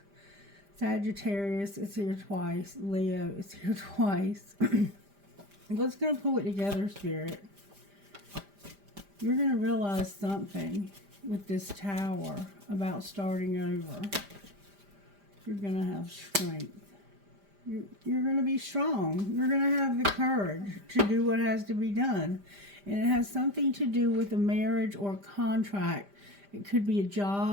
Sagittarius is here twice. Leo is here twice. What's going to pull it together, Spirit? You're going to realize something with this Tower about starting over. You're going to have strength. You're going to be strong. You're going to have the courage to do what has to be done. And it has something to do with a marriage or a contract. It could be a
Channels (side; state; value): left; late; 5.0 ms